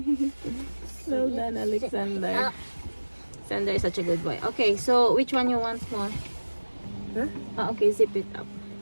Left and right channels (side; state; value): both; inverted; correlation -1.00